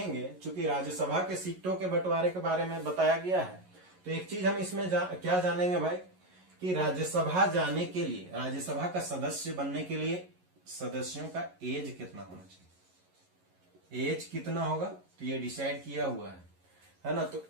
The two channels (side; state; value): left; late; 11 ms